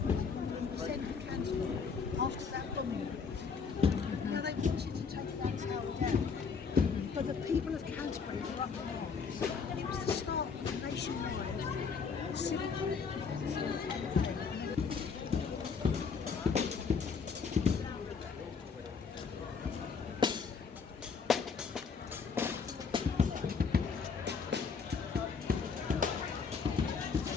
in the centre of Canterbury after that bombing. Now they wanted to take that tower down, but the people of Canterbury were up in arms. It was the start of a nationwide civil war.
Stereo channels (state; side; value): quieter; right; 5.6 dB